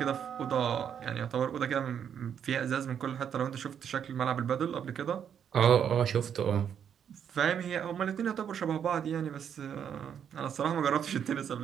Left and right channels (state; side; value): quieter; left; 8.4 dB